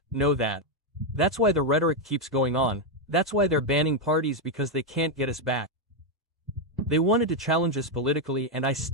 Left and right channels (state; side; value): normal; both; correlation 0.03